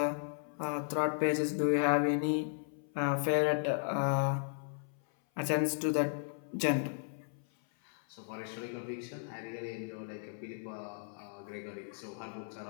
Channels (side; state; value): right; silent; 54 dB below the other